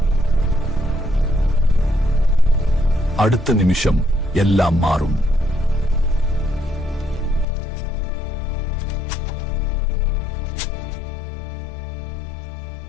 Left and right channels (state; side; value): drops out; right; at 7.5 s